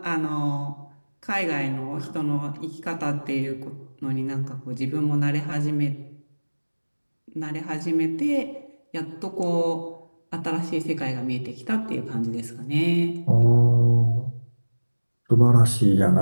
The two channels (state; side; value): inverted; both; correlation -1.00